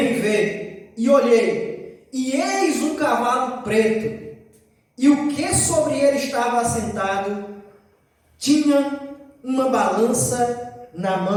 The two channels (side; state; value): both; identical; correlation 1.00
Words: ver. E olhei, e eis um cavalo preto, e o que sobre ele estava assentado tinha uma balança na